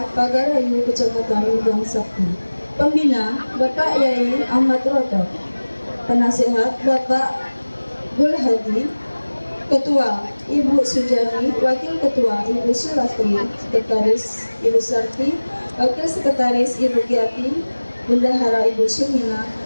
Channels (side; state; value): both; inverted; correlation -1.00